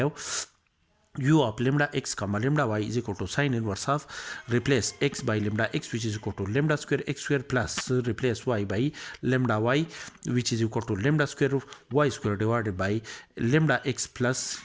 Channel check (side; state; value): both; identical; correlation 1.00